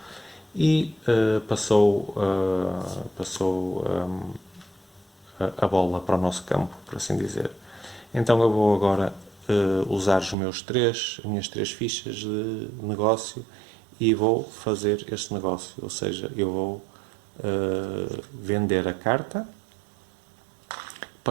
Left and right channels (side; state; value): left; drops out; at 10.4 s